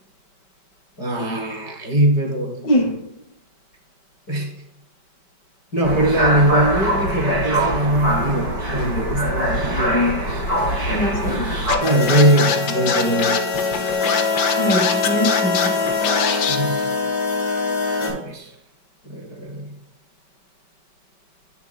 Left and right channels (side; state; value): right; late; 5.2 ms